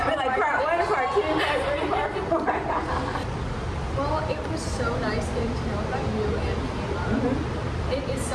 like part 1, part 2, part 3, part 4. Well, it was so nice getting to know about you and Caleb. It is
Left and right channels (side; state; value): both; identical; correlation 1.00